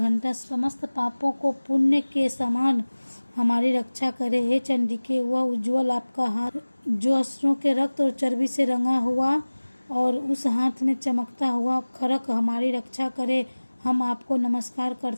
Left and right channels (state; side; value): inverted; both; correlation -1.00